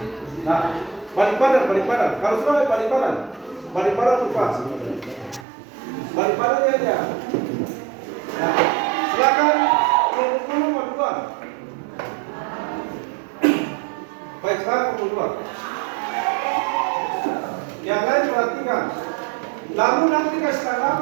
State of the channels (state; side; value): drops out; left; at 5.5 s